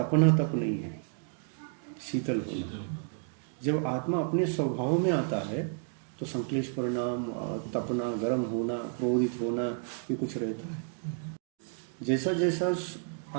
तप नहीं है, शीतल होना। जब आत्मा अपने स्वभाव में आता है तो संक्लेश परिणाम, तपना, गर्म होना, क्रोधित होना, ये कुछ रहता है। जैसा जैसा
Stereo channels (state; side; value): silent; left; 57 dB below the other